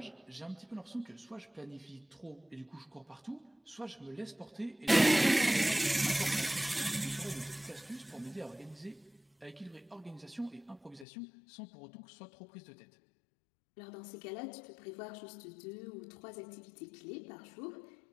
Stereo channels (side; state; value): right; drops out; at 11.1 s